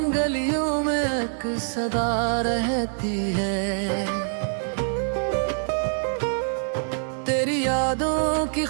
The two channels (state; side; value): silent; left; 62 dB below the other